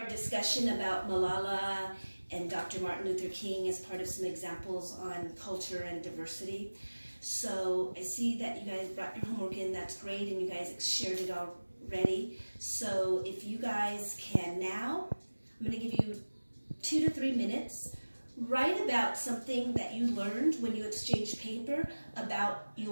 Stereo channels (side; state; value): both; inverted; correlation -1.00